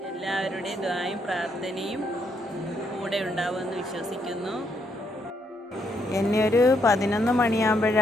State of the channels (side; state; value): both; normal; correlation 0.75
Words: എല്ലാവരുടെയും ദുആയും പ്രാർത്ഥനയും കൂടെ ഉണ്ടാവുമെന്ന് വിശ്വസിക്കുന്നു. എന്നെ ഒരു 11